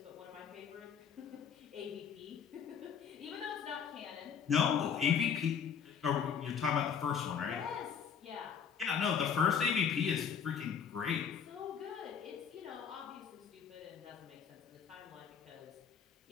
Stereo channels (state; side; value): quieter; right; 7.2 dB